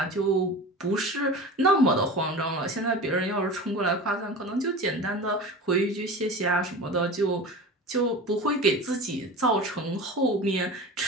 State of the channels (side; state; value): both; normal; correlation 0.33